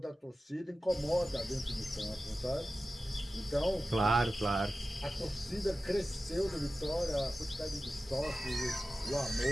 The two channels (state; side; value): normal; both; correlation 0.94